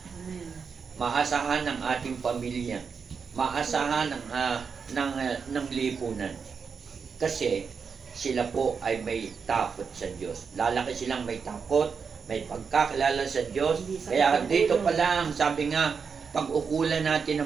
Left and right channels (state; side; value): quieter; left; 5.8 dB